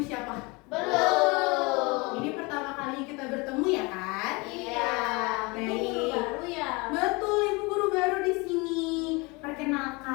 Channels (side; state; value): right; quieter; 26.6 dB